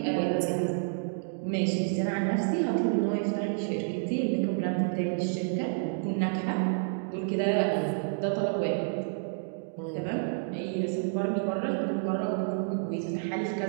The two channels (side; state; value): left; silent; digital silence